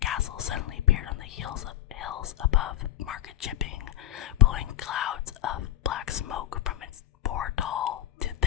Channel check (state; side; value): quieter; right; 12.9 dB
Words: suddenly appeared on the hills above Market Chipping, blowing clouds of black smoke from its 4 tall to